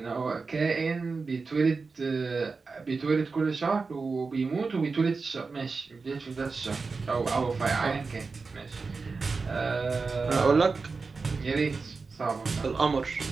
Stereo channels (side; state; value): left; quieter; 4.4 dB